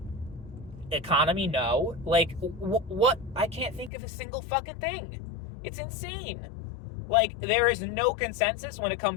Economy, no. Like, what? I can't think of a single fucking thing. It's insane. Like, there is no consensus when it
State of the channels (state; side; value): drops out; right; at 3.9 s